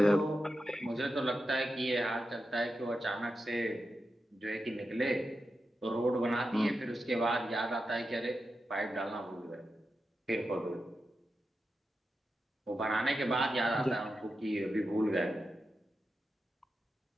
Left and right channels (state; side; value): normal; both; correlation 0.89